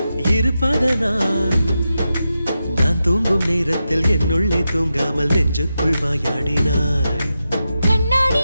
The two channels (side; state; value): both; inverted; correlation -0.89